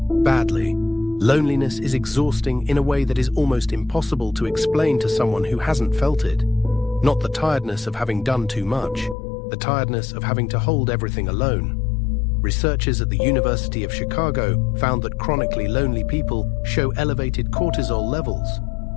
Badly. Loneliness is exhausting in a way that is almost impossible to explain to someone who hasn't felt it. Not the tiredness of having done too much, the tiredness of having to hold everything alone. Researchers at the University of Chicago found that chronically lonely people show elevated cortisol levels,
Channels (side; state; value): right; drops out; at 9.2 s